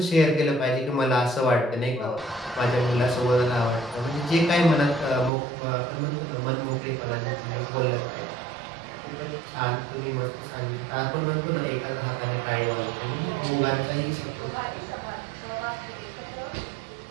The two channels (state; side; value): drops out; left; at 5.3 s